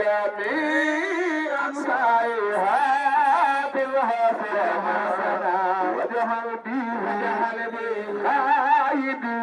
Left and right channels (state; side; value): identical; both; correlation 1.00